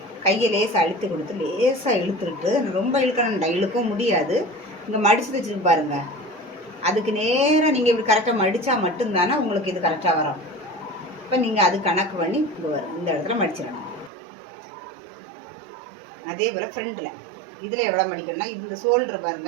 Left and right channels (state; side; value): drops out; left; at 14.1 s